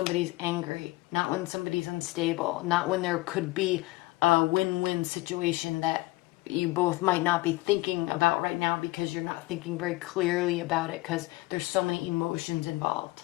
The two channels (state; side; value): quieter; right; 21.1 dB